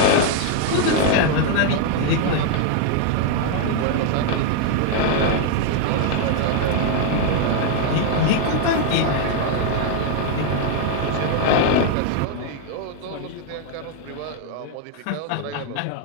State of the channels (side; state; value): both; different; correlation 0.00